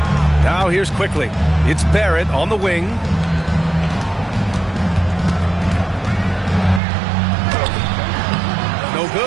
Now here's quickly. It's Barrett on the wing. No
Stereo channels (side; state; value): left; drops out; at 6.8 s